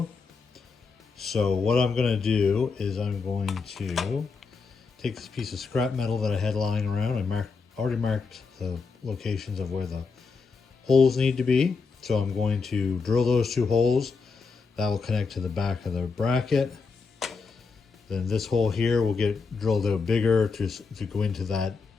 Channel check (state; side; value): quieter; right; 4.8 dB